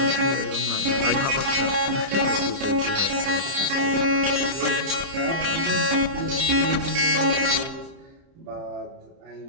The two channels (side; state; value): left; late; 30 ms